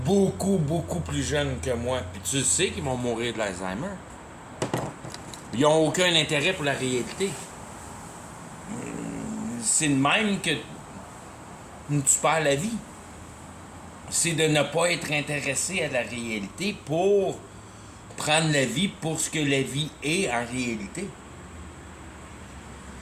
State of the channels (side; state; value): both; identical; correlation 1.00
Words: beaucoup plus jeunes que moi. Puis tu sais qu'ils vont mourir de l'Alzheimer. Ils n'ont aucun intérêt pour la réalité. C'est de même que tu perds la vie. C'est de ne pas être intéressé à la réalité pour prendre la vie pour ce que la vie est en réalité.